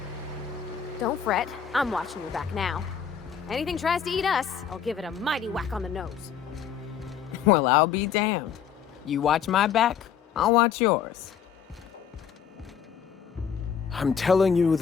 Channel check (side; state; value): right; quieter; 7.8 dB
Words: Don't fret. I'm watching your back now. Anything tries to eat us, I'll give it a mighty whack on the nose. Well, I'll be damned. You watch my back, I'll watch yours. I'm telling you,